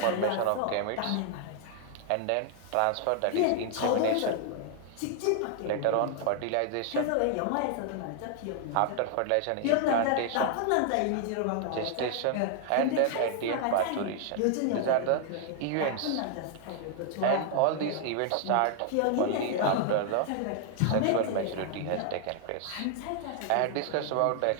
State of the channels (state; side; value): different; both; correlation 0.00